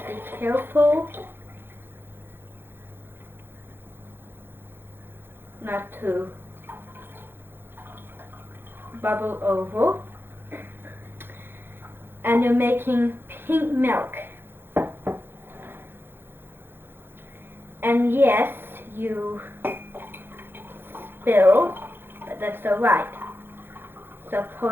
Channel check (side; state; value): left; late; 0.10 ms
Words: careful not to bubble over. And you're making pink milk. And yes, you spill, but that's alright. So